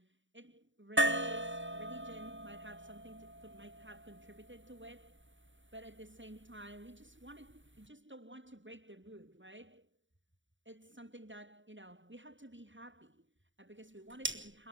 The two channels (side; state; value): left; late; 0.55 ms